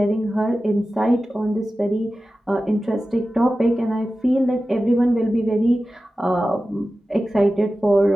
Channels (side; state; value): both; normal; correlation 0.94